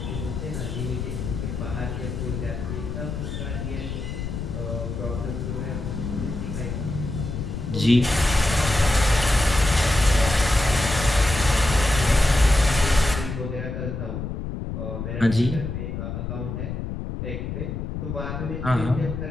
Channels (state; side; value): noise; left; rumble, 5 dB below the sound